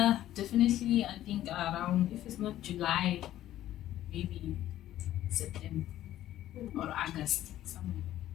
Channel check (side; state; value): right; quieter; 13.2 dB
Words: Definitely, I think around, if it's not July, maybe September or August, somewhere.